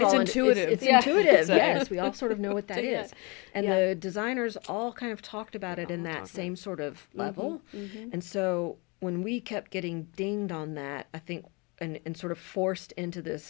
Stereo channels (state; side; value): quieter; right; 29.0 dB